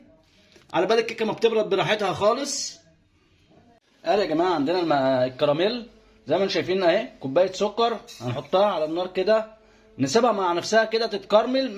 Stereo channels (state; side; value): identical; both; correlation 1.00